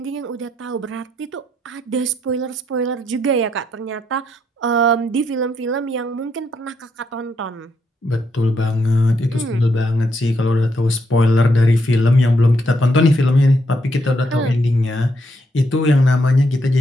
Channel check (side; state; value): both; normal; correlation 0.77